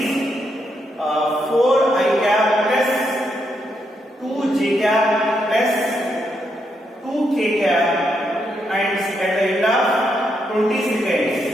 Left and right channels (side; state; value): both; normal; correlation 0.80